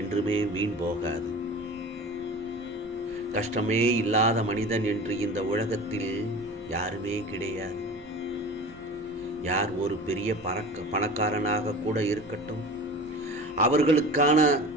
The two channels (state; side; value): normal; both; correlation 0.36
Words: வீண் போகாது. கஷ்டமே இல்லாத மனிதன் என்று இந்த உலகத்தில் யாருமே கிடையாது. யார் ஒரு பெரிய பணக்காரனாக கூட இருக்கட்டும், அவர்களுக்கான